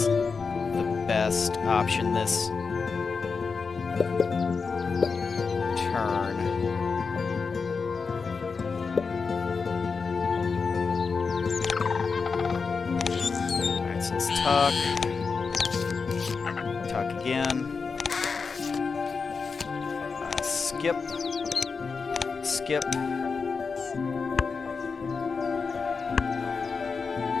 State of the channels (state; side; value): quieter; right; 5.0 dB